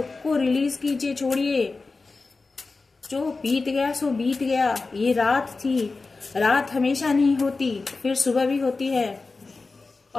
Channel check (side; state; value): right; quieter; 3.9 dB